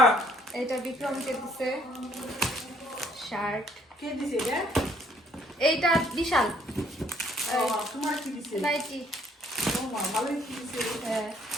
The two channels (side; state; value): both; normal; correlation 0.63